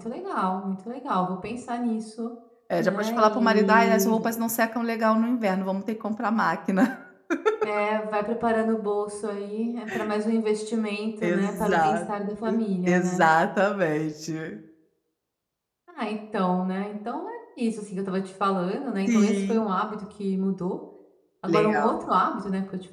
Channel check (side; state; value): both; identical; correlation 1.00